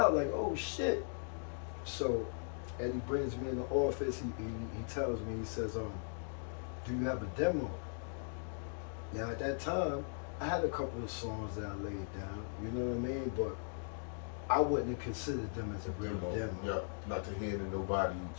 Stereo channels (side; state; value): right; silent; digital silence